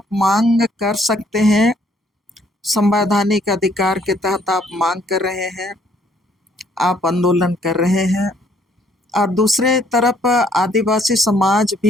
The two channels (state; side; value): normal; both; correlation 0.65